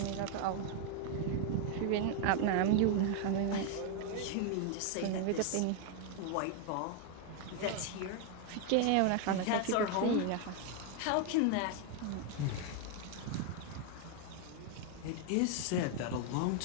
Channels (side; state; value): both; different; correlation 0.00